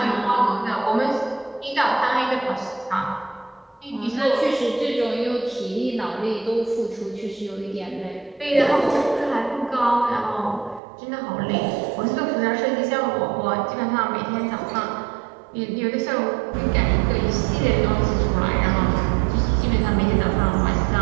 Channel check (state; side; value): drops out; left; at 10.8 s